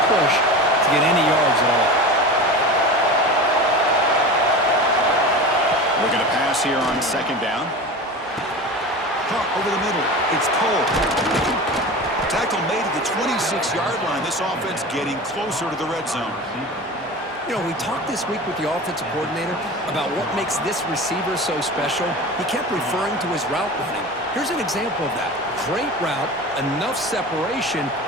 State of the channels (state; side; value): normal; both; correlation 0.31